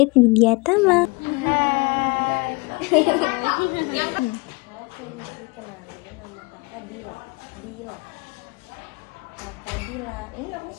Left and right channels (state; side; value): quieter; right; 27.4 dB